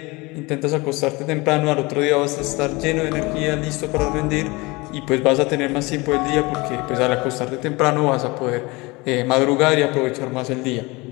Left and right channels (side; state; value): right; quieter; 24.2 dB